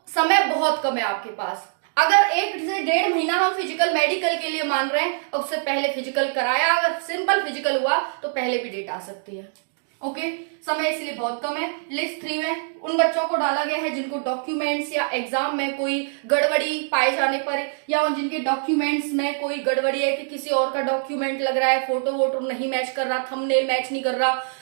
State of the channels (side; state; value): left; silent; 63 dB below the other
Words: समय बहुत कम है आपके पास। अगर 1 से 1.5 महीना हम फिजिकल मेडिकल के लिए मान रहे हैं, उससे पहले फिजिकल कराया, अगर सिंपल फिजिकल हुआ तो पहले भी डेट आ सकती है। ओके, समय इसलिए बहुत कम है। लिस्ट 3 में उन बच्चों को डाला गया है जिनको डॉक्यूमेंट्स या एग्जाम में कोई गड़बड़ी पाए जाने पर, या जिनके डॉक्यूमेंट्स में कोई गड़बड़ी है कि किसी और का डॉक्यूमेंट लग रहा है, फोटो वोटो नहीं मैच कर रहा, थंबनेल मैच नहीं कर रहा,